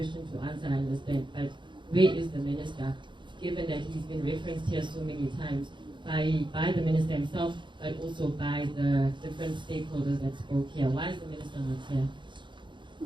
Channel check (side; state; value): left; late; 0.23 ms